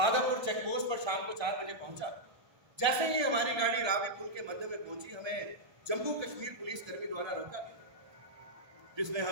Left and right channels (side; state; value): left; late; 1.2 ms